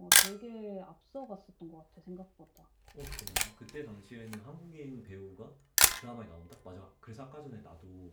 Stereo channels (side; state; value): both; identical; correlation 1.00